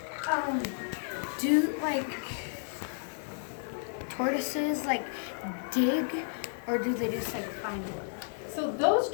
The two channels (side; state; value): right; silent; digital silence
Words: Do like tortoises like dig, or do they just like find water? So those